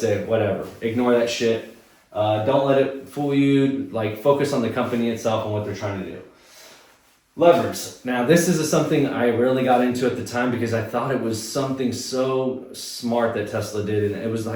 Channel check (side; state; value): both; identical; correlation 1.00